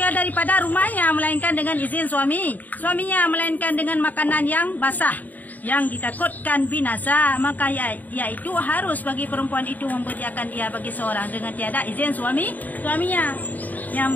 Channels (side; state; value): right; late; 0.082 ms